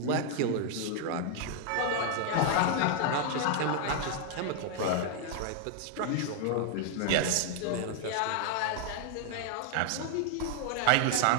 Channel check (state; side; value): different; both; correlation 0.00